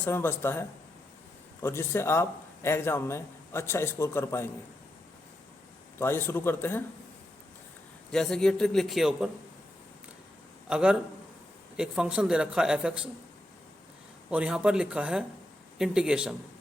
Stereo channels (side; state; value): both; normal; correlation 0.85